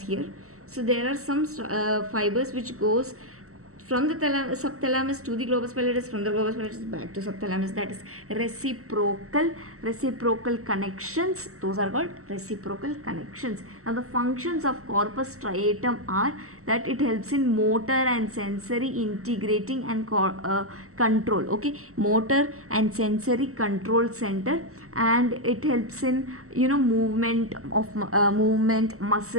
here. So there are some fibers which goes from the subthalamus to the globus pallidus, from the globus pallidus back to subthalamus. That is reciprocal connections. Those are called reciprocal connections. Now the functions of corpus striatum are that it helps in motor and sensory integrating and control. Okay, motor and sensory control center, and it helps in movement,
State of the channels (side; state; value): left; late; 0.64 ms